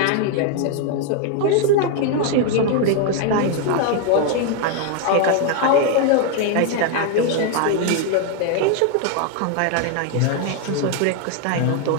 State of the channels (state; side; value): different; both; correlation 0.01